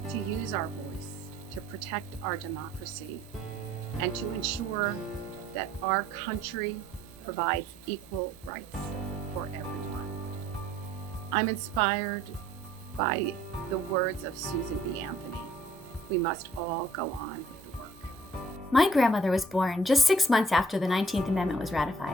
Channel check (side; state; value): both; normal; correlation 0.59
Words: to use our voice, to protect our democracy, and to ensure that our country provides equal rights for everyone. I'm inspired by the words of Susan B. Anthony. We must all go on with the work. My grandmother was born just 6 months after the 19th Amendment was